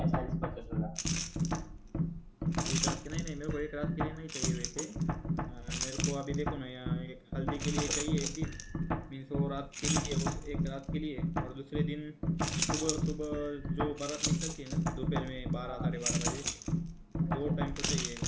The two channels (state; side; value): identical; both; correlation 1.00